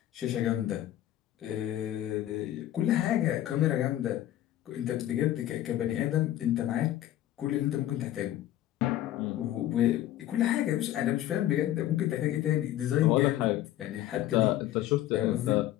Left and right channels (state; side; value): quieter; right; 13.3 dB